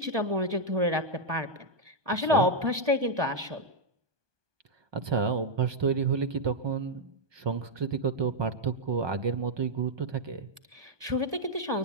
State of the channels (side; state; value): left; late; 1.2 ms